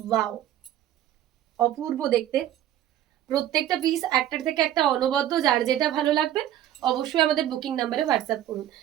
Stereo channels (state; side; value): quieter; left; 12.1 dB